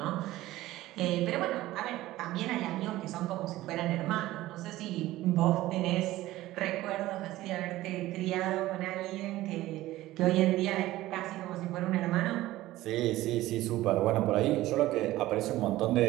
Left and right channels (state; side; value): quieter; left; 16.4 dB